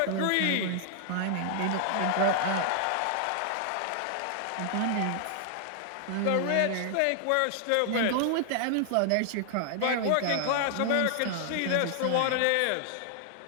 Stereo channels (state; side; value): different; both; correlation 0.00